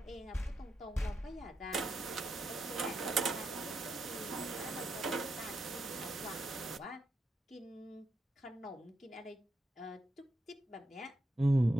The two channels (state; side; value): normal; both; correlation 0.84